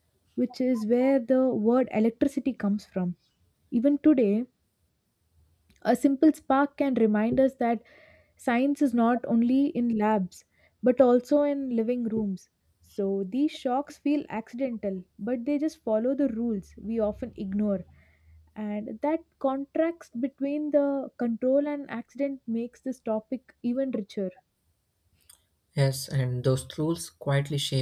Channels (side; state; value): both; identical; correlation 1.00